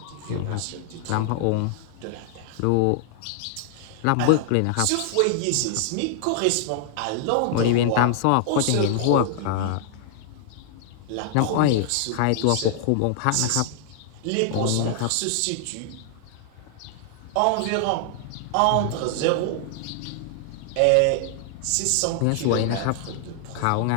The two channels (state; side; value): different; both; correlation -0.01